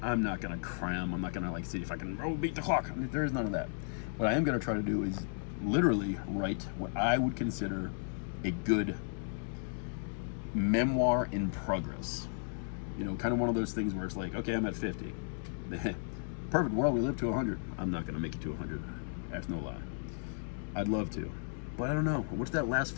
I'm not gonna cram. I'm not gonna like see if I can beat the clock. I mean, there is none of that. What I am gonna try to do is literally write what I would consider a good memoir in progress. You know, kind of one of those things where it's like, okay, I'm at 50. Perfect world, we live to 100. I'm not gonna make it to 100. That's no lie. I'd love to, but I don't know. What's that last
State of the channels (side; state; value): right; silent; digital silence